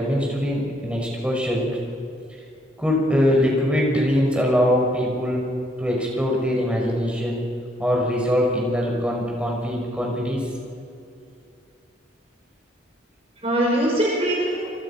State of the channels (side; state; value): both; normal; correlation 0.68